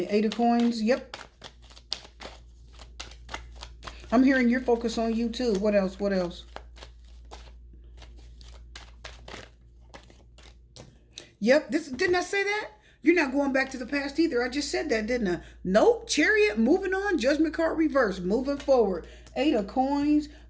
8 of Coins. Yep. I'm hearing your focus on you too. What else? What else? Yep. Didn't I say that? You're not going back to the past either. I just said that, didn't I? Nope. Chariot, moving on. Judgment card reverse, moving forward. 8 of Coins,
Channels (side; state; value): both; identical; correlation 1.00